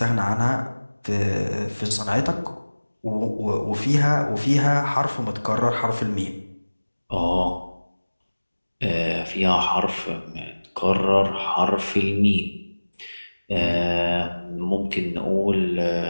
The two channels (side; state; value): both; inverted; correlation -1.00